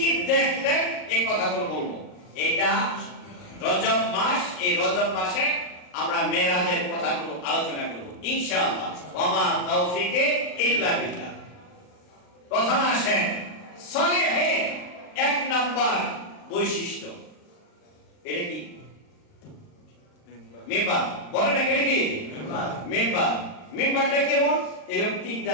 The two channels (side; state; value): right; late; 39 ms